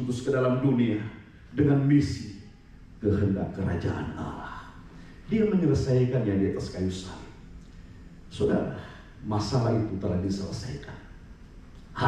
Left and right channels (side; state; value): both; identical; correlation 1.00